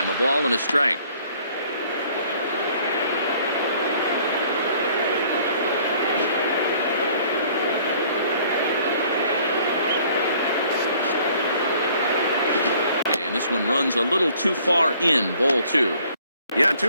A ball and a strike. This one runs a little too far in, ball 2. Yeah,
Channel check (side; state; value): both; inverted; correlation -0.58